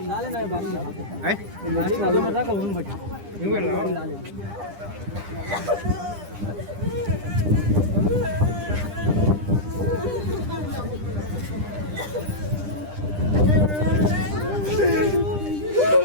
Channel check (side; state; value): left; late; 10 ms